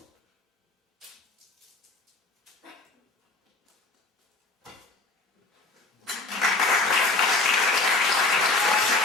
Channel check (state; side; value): quieter; right; 3.4 dB